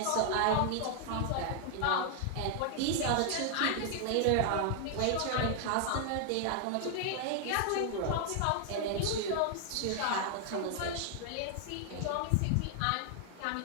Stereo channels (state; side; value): different; both; correlation 0.00